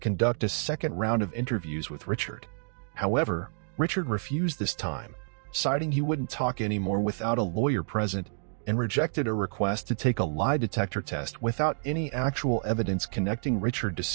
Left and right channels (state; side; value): silent; left; digital silence